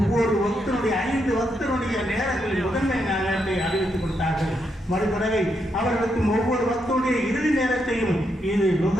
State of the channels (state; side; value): normal; both; correlation 0.80